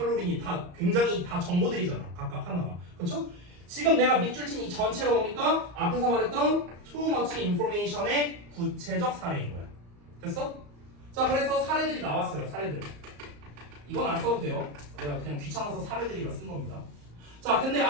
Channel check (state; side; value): late; left; 34 ms